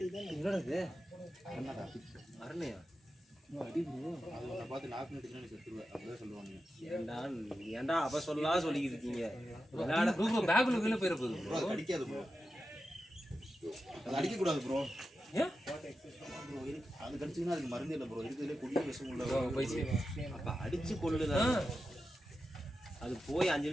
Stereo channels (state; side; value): normal; both; correlation 0.90